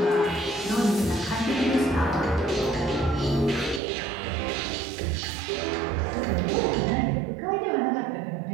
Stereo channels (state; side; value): drops out; left; at 3.8 s